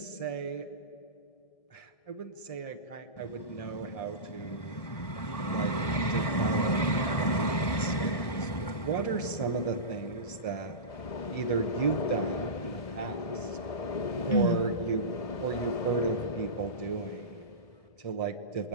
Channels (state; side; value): late; right; 1.7 ms